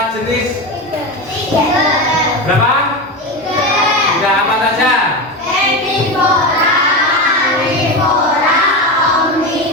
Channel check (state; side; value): normal; both; correlation 0.19